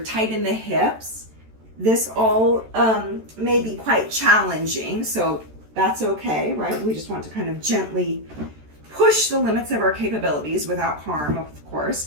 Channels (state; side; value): late; left; 13 ms